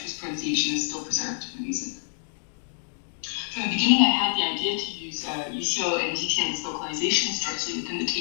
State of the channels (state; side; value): silent; right; digital silence